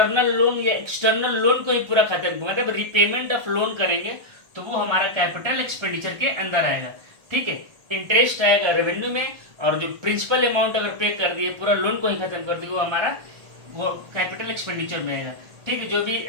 लोन या एक्सटर्नल लोन को ही पूरा खत्म, मतलब रिपेमेंट ऑफ लोन करेंगे, तो वो हमारा कैपिटल एक्सपेंडिचर के अंदर आएगा। ठीक है, इंटरेस्ट आएगा रेवेन्यू में, और जो प्रिंसिपल अमाउंट अगर पे कर दिए, पूरा लोन को ही खत्म कर दिए, वो हमारा वो कैपिटल एक्सपेंडिचर में आएगा। ठीक है, जो भी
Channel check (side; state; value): left; late; 1.2 ms